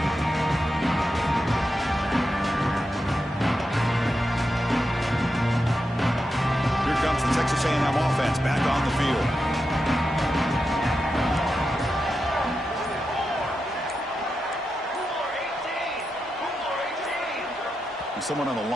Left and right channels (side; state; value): both; normal; correlation 0.88